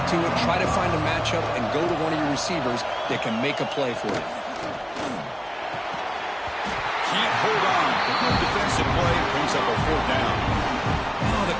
to it, try to find a matchup, and go to one of your receivers that can make a play for you. Can't hold on. The good defensive play brings up a fourth down. Oh, the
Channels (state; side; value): identical; both; correlation 1.00